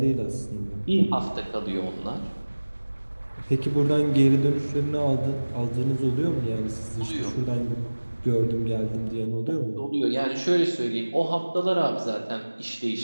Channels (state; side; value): inverted; both; correlation -1.00